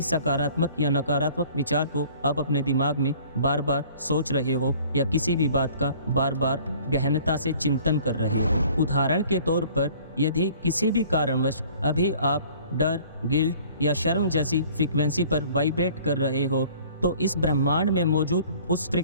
सकारात्मक या नकारात्मक विचार को आप अपने दिमाग में बार बार सोच रहे हो, या किसी भी बात का बार बार गहनता से चिंतन कर रहे हो। उदाहरण के तौर पर, यदि किसी भी कारणवश अभी आप डर, गिल्ट या शर्म जैसी फ्रीक्वेंसी पर वाइब्रेट कर रहे हो, तो इस ब्रह्मांड में मौजूद उस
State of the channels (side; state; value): both; inverted; correlation -0.52